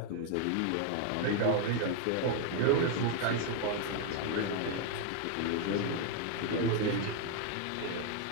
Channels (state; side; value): different; both; correlation 0.00